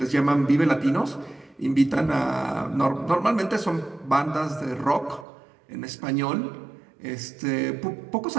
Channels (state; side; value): drops out; left; at 5.2 s